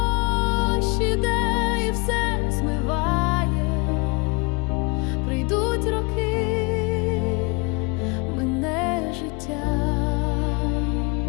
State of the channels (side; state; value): right; quieter; 29.8 dB